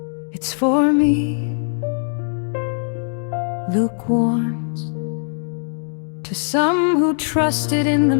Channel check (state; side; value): silent; right; digital silence